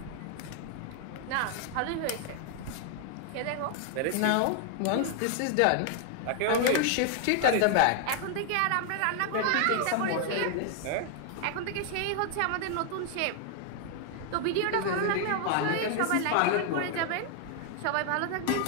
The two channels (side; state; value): both; different; correlation 0.00